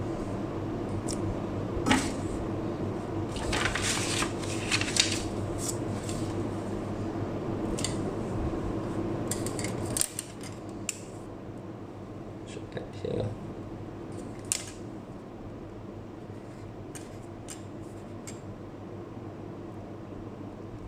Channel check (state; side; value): identical; both; correlation 1.00